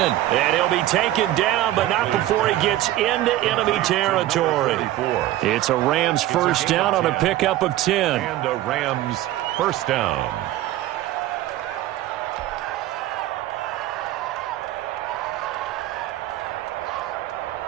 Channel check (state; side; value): quieter; left; 14.6 dB